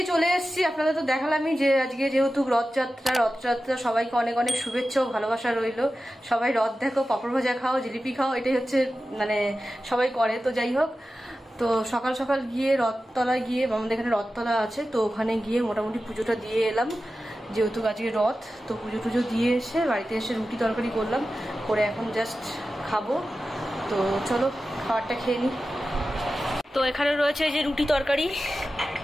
চলে এসেছি। আপনাদের তো দেখালামই যে আজকে যেহেতু রথযাত্রা সবাইকে অনেক অনেক শুভেচ্ছা ও ভালোবাসা রইল। সবাই রথ দেখো, পাঁপড় ভাজা খাও, জিলিপি খাও, এটাই হচ্ছে মানে সবাই করে। তো যাই হোক, তো সকাল সকাল গিয়ে রথতলায় গিয়ে, আমাদের এখানে রথতলা আছে, তো ওখানে গিয়ে মোটামুটি পুজোটা দিয়ে এলাম যেহেতু আজকে রথ। তো পুজো টুজো দিয়ে এসে বাড়িতে এসে রুটি তরকারি করলাম, করে এখন জাস্ট খাবো। তো চলো খাবারটা খেয়ে নিই। তো এখানে রয়েছে এই যে রুটি তরকারি,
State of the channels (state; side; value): normal; both; correlation 0.93